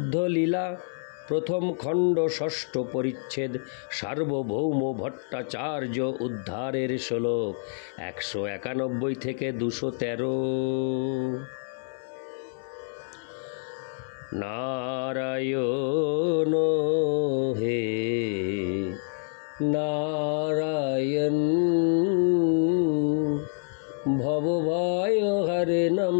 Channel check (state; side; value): silent; right; 60 dB below the other